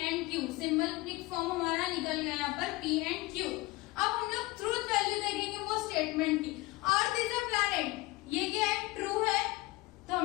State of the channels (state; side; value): quieter; right; 20.9 dB